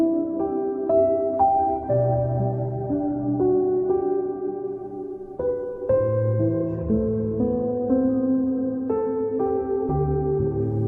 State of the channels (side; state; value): both; identical; correlation 1.00